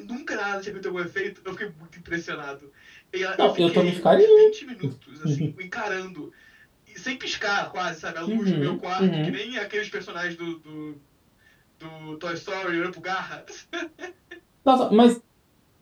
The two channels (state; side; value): identical; both; correlation 1.00